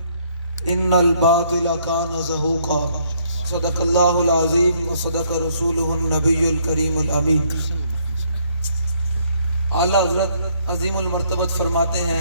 ان الباطل كان زهوقا صدق اللہ العظیم وصدق رسولہ النبی الکریم الامین اعلیٰ حضرت عظیم المرتبت فرماتے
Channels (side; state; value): both; inverted; correlation -0.68